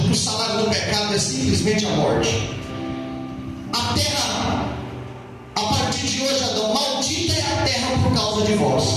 o salário do pecado é simplesmente a morte. A terra, a partir de hoje, Adão, maldita é a terra por causa de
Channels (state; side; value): identical; both; correlation 1.00